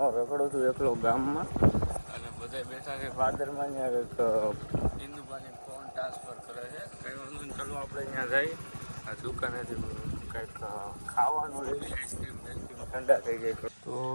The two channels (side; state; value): both; inverted; correlation -1.00